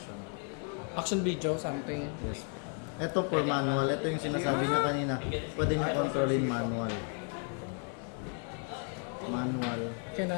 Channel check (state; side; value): quieter; right; 39.2 dB